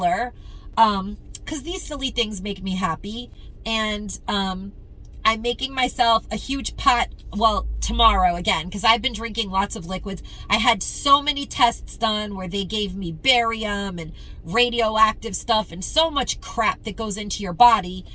Because these silly things make me happy. And I'm making myself a huge pot, well, tomorrow again, because I've been drinking lots of liquids. I had so many tests done where they gave me barium and radioactive stuff and so much crap that goes into your body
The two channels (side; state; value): both; identical; correlation 1.00